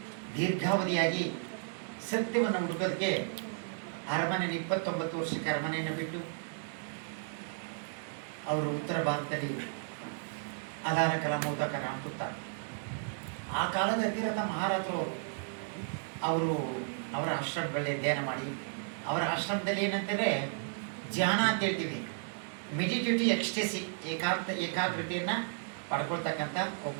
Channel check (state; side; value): silent; left; digital silence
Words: ದೀರ್ಘಾವಧಿಯಾಗಿ ಸತ್ಯವನ್ನು ಹುಡುಕೋದಕ್ಕೆ ಅರಮನೆಯನ್ನು 29 ವರ್ಷಕ್ಕೆ ಅರಮನೆಯನ್ನು ಬಿಟ್ಟು ಅವರು ಉತ್ತರ ಭಾರತದಲ್ಲಿ ಅದಾರ ಕಲಾ ಮೋದಕ ರಾಮಪುತ್ತ ಆ ಕಾಲದ ಅತಿರಥ ಮಹಾರಾಜರು ಅವರು ಅವರ ಆಶ್ರಮಗಳಲ್ಲೇ ಧ್ಯಾನ ಮಾಡಿ, ಅವರ ಆಶ್ರಮದಲ್ಲಿ ಏನಂತಂದರೆ ಧ್ಯಾನ ಅಂತ ಹೇಳ್ತೀವಿ, ಮೆಡಿಟೇಟಿವ್ ಎಕ್ಸ್ಟೆಸಿ, ಏಕಾಗ್ರತೆಯನ್ನು ಪಡ್ಕೊಳ್ತಕ್ಕಂಥ